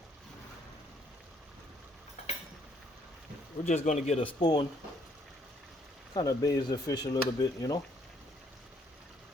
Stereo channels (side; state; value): both; normal; correlation 0.67